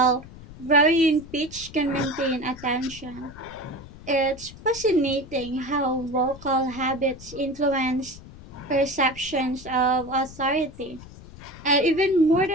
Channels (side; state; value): left; noise; rumble, 17 dB below the sound